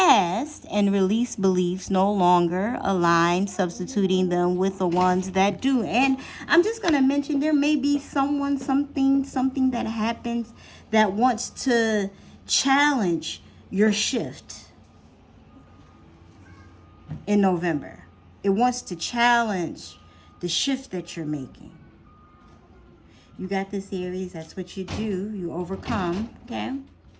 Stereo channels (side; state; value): both; identical; correlation 1.00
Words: and release beliefs no longer align, substituting them with the ones that do. And I'm just going to mention there may be someone, something that happens that wants to challenge your shift. In November, it wants to challenge the shift that you're making. You got this, Aries. That's what you do. You overcome. Okay.